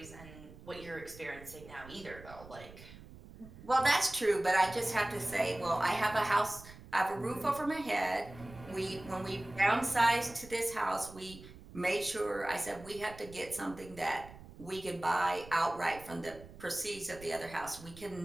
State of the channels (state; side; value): noise; right; rumble, 17 dB below the sound